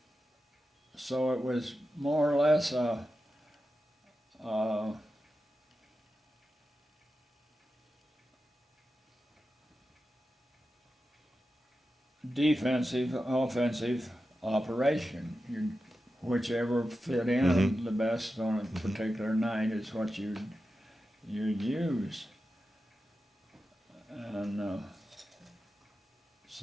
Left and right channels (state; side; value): normal; both; correlation 0.91